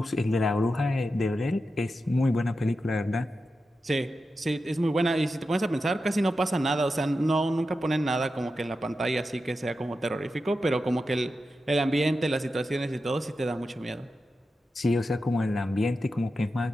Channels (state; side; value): normal; both; correlation 0.90